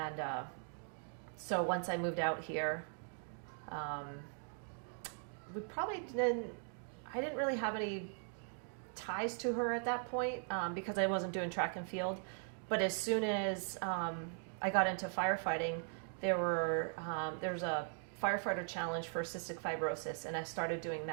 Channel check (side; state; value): left; silent; 51 dB below the other